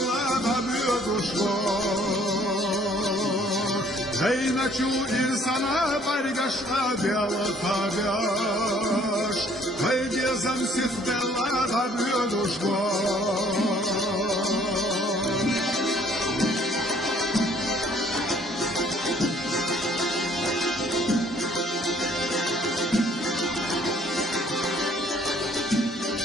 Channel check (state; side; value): normal; both; correlation 0.60